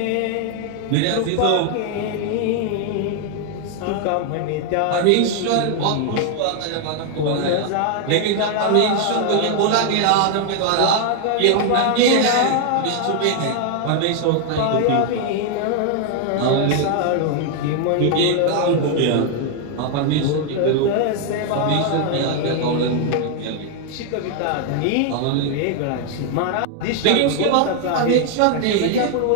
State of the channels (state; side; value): different; both; correlation 0.00